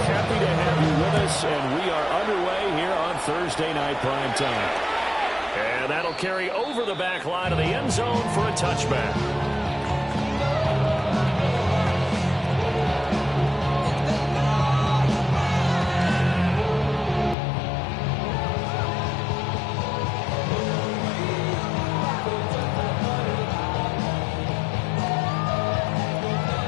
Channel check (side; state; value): right; drops out; at 17.4 s